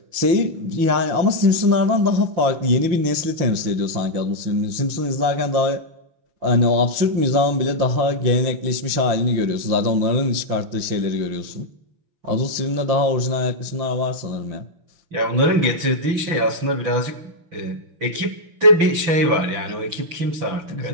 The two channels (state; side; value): late; left; 6.0 ms